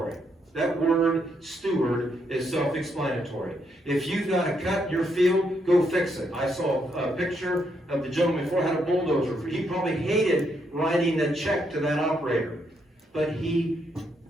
That word steward is self-explanatory. If you've got a cut in your field, go fix it. I saw a picture of the gentleman before had a bulldozer. He probably hated writing a check to that operator. But he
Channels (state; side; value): normal; both; correlation 0.77